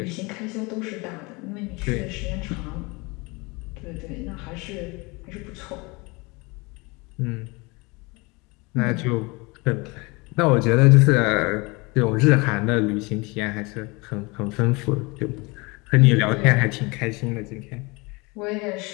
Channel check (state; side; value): quieter; right; 26.4 dB